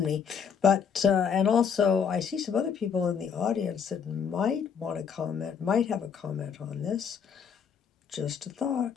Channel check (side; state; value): right; quieter; 7.0 dB